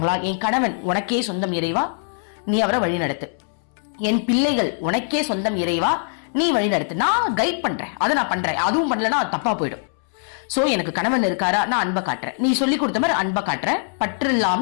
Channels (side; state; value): right; silent; 64 dB below the other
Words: என் கணவன் உனக்கே சொந்தம் இறைவா, நீ அவரை வழி நடத்து. என் பிள்ளைகள் உனக்கே சொந்தம் இறைவா, நீ வழி நடத்து. நான் கைட் பண்றேன், அதை நான் பண்றேன். அதுவும் பண்ணலன்னா அது தப்பா போயிடும். சோ எனக்கு கணவன் இருக்காரா, நான் அன்பை காட்டுறேன். நீ சொல்லி கொடுத்த மாதிரி அன்பை காட்டுறேன். பற்று